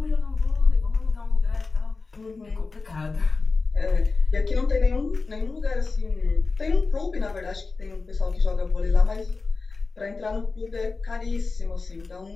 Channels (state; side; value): quieter; right; 4.0 dB